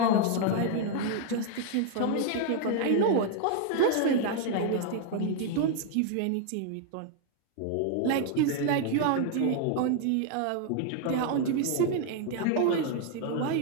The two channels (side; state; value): both; different; correlation 0.00